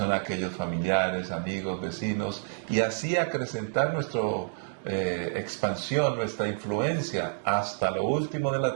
aquellos familiares, amigos, vecinos, y así acrecentar nuestra expansión, nuestra influencia hasta lo último de la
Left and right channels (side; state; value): left; silent; digital silence